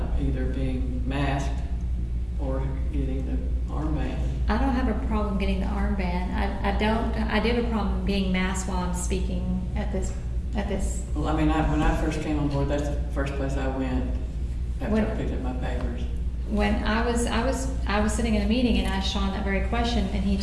either being masked or getting the armband. I don't have a problem getting the armband. I do have a problem being masked while I'm speaking at this. Well, I mean, when I first came on board, that's the first place I went after I picked up my papers. When I was sitting in a meeting and asked Sean that very question, and he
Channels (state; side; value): identical; both; correlation 1.00